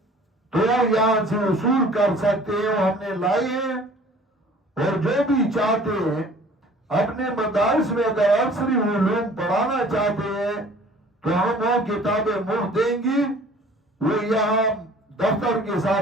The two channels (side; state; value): both; normal; correlation 0.50